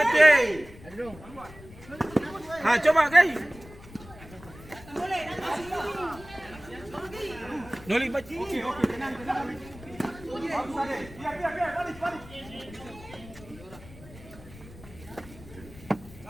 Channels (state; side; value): noise; left; rumble, 18 dB below the sound